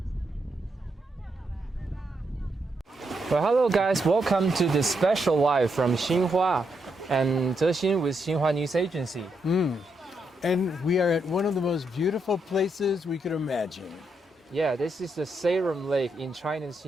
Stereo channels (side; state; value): both; normal; correlation 0.80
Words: 3Well, hello guys, welcome to the special live from Xinhua and Zexin with Xinhua News Agency. And we are at one of the most beautiful places we could imagine. Yeah, this is the Sayram Lake in China's